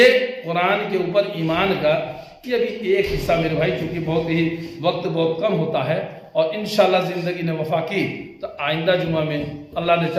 قرآن کے اوپر ایمان کا یہ ابھی ایک حصہ میرے بھائی، چونکہ بہت ہی وقت بہت کم ہوتا ہے، اور انشاءاللہ زندگی نے وفا کی تو آئندہ جمعہ میں اللہ نے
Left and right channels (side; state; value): both; identical; correlation 1.00